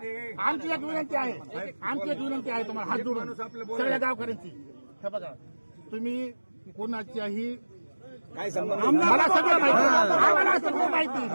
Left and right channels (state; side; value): inverted; both; correlation -1.00